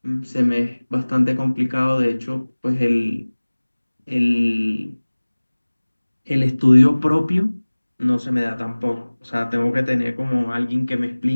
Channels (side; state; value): both; inverted; correlation -1.00